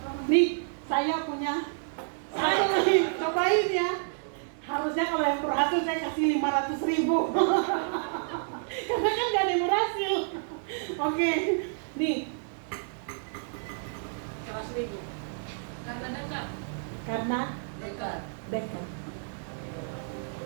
Nih, saya punya satu nih, cobain ya. Harusnya kalau yang berhasil saya kasih 500.000. Karena kan gak ada yang berhasil. Oke, nih. 100.000. Karena dekat. Karena dekat.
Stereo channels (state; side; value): silent; left; digital silence